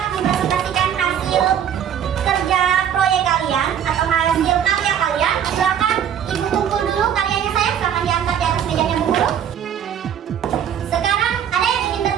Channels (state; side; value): quieter; left; 9.1 dB